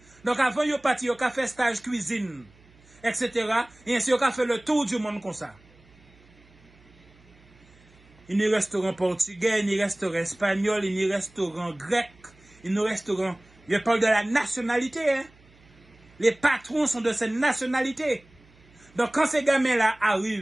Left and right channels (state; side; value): noise; right; hum, 28 dB below the sound